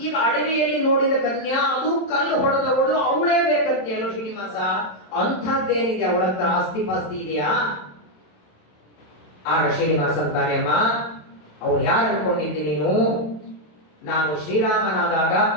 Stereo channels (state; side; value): late; right; 27 ms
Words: ಈಗ ಅಡವಿಯಲ್ಲಿ ನೋಡಿದ ಕನ್ಯಾ, ಅದು ಕಲ್ಲು ಹೊಡೆದವಳು, ಅವಳೇ ಬೇಕಂತೆಯಲ್ಲ ಶ್ರೀನಿವಾಸ. ಅಂಥದ್ದೇನಿದೆ ಅವಳ ಹತ್ರ? ಆಸ್ತಿ ಪಾಸ್ತಿ ಇದೆಯಾ? ಆಗ ಶ್ರೀನಿವಾಸ ಅಂತಾನೆ, ಅಮ್ಮ, ಅವ್ರು ಯಾರು ಅನ್ಕೊಂಡಿದ್ದಿ ನೀನು? ನಾನು ಶ್ರೀರಾಮನಾದಾಗ